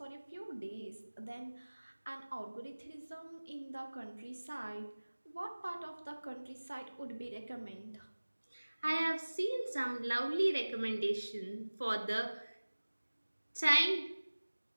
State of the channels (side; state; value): both; inverted; correlation -1.00